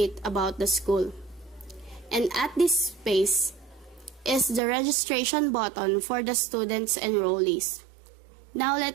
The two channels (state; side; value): drops out; left; at 4.6 s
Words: about the school. And at this space is the registration button for the students enrollees. Now